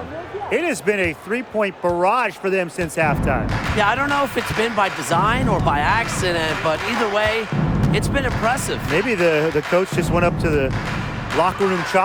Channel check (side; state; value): both; identical; correlation 1.00